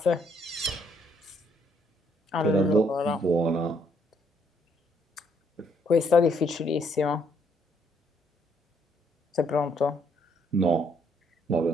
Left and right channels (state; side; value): normal; both; correlation 0.69